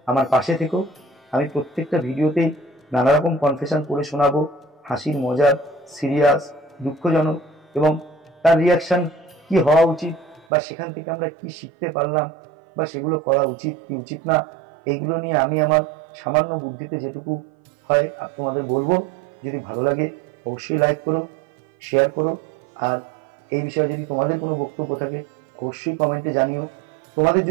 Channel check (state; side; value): drops out; left; at 10.5 s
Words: আমার পাশে থেকো। আমি প্রত্যেকটা ভিডিওতেই নানা রকম কনফেশন করে শোনাবো, হাসির, মজার, সিরিয়াস, দুঃখজনক, এবং তার রিয়াকশন কি হওয়া উচিত, বা সেখান থেকে আমরা কি শিখতে পারলাম, বা সেগুলো করা উচিত কি উচিত না, এইগুলো নিয়ে আমি আমার সামান্য বুদ্ধিতে যেটুকু হয় তোমাদের বলবো। যদি ভালো লাগে অবশ্যই লাইক করো, শেয়ার করো, আর এই বিষয়ে যদি তোমাদের কোনো বক্তব্য থাকে অবশ্যই কমেন্টে জানিও। তোমাদের